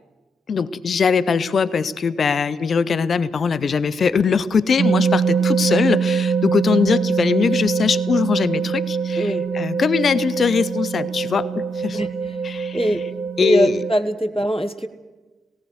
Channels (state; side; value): normal; both; correlation 0.79